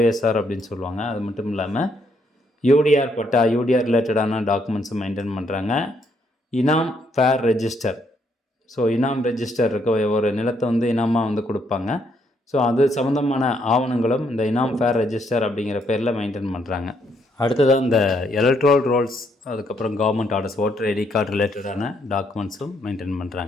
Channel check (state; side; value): normal; both; correlation 0.73